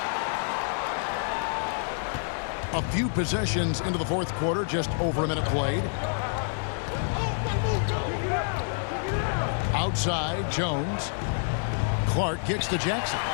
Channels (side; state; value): right; silent; 60 dB below the other